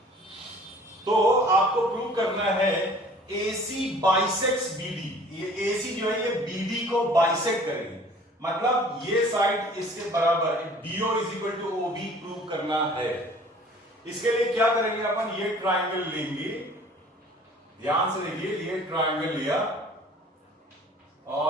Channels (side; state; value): both; normal; correlation 0.50